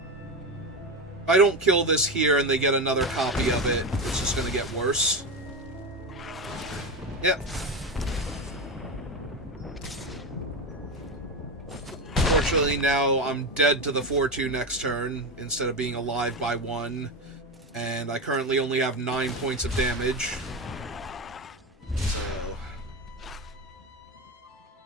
If I don't kill this here and they get another copy of it, it's just gonna get worse. Yep. Fortunately, now I'm dead to the 4-2 next turn, instead of being alive by 1. And I currently only have 9 points of damage. So...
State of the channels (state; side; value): normal; both; correlation 0.18